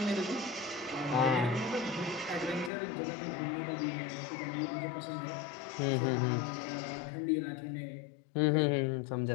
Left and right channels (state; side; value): drops out; right; at 2.7 s